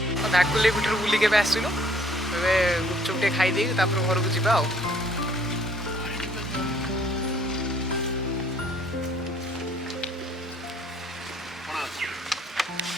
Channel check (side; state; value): both; normal; correlation 0.61